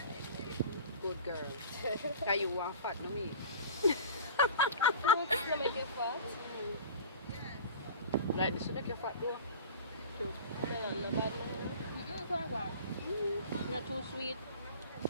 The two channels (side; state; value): both; inverted; correlation -0.40